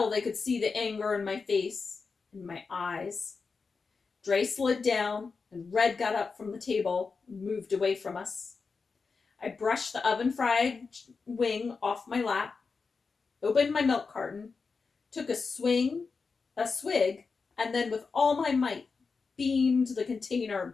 they could see the anger in my face, in my eyes. Dre slid down, and Red got up from the table and moved away from us. I brushed the oven-fried wing off my lap, opened my milk carton, took a swig, and then with all my might, beamed the container at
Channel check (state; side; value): quieter; right; 4.8 dB